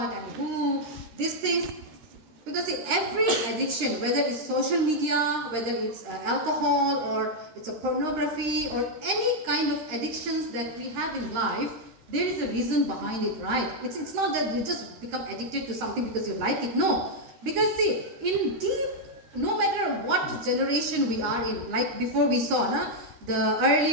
and who, these things. Because see, every addiction, whether it's social media, whether it's alcohol, or it's a pornography, or any kind of addictions that we have in life, there is a reason behind it, right? It's not that you just become addicted to something because you like it. No. Because see, in deep, no matter what generation we are in, like before we saw, the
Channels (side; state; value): left; late; 13 ms